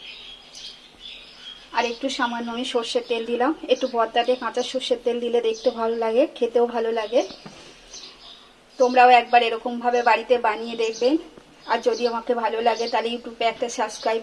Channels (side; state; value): both; identical; correlation 1.00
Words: আর একটু সামান্য আমি সর্ষের তেল দিলাম। একটু ভর্তাতে কাঁচা সর্ষের তেল দিলে দেখতে ভালো লাগে, খেতেও ভালো লাগে। তোমরাও একবার এরকমভাবে বাড়িতে বানিয়ে দেখবেন। আর যদি আমাকে ভালো লাগে তাহলে ইউটিউবে একটা সাবস্ক্রাইব